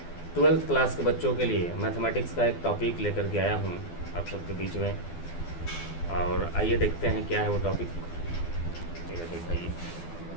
12th क्लास के बच्चों के लिए मैथमेटिक्स का एक टॉपिक लेकर के आया हूँ आप सबके बीच में। और आइए देखते हैं क्या है वो टॉपिक। ये दिखाइए।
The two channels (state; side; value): late; right; 12 ms